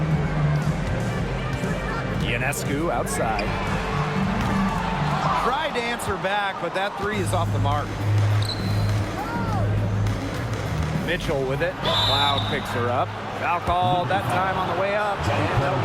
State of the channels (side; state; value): both; identical; correlation 1.00